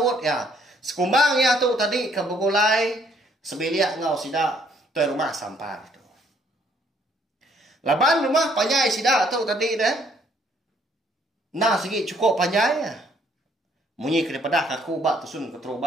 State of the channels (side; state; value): both; normal; correlation 0.65